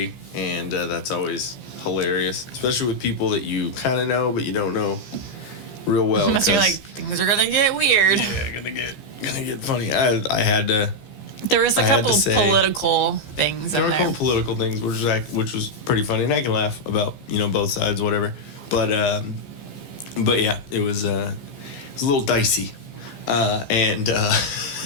and that's always hilarious, especially with people that you kind of know but you don't know real well. Unless you're like, things are gonna get weird. Yeah, gonna get funny. I had to. There was a couple political things in There were a there. couple political things, which was pretty funny, and I can laugh about both sides, whatever. But yeah, it was a little dicey, and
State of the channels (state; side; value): late; right; 15 ms